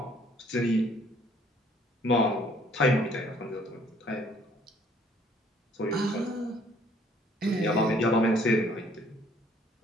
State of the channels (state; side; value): normal; both; correlation 0.60